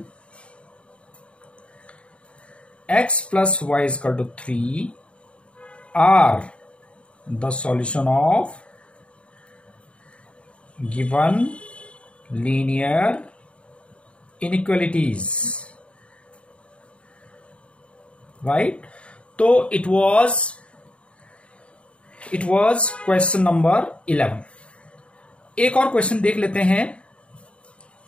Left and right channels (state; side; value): late; right; 0.060 ms